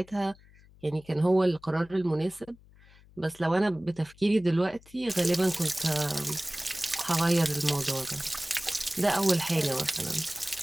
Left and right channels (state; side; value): noise; left; hum, 26 dB below the sound